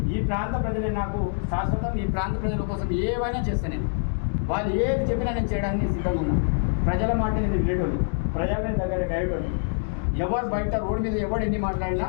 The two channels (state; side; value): silent; right; digital silence